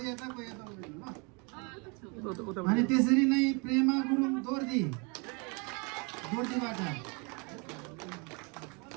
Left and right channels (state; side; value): quieter; left; 32.2 dB